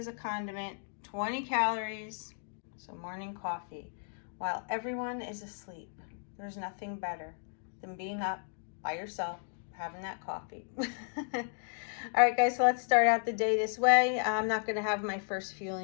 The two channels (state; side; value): silent; right; digital silence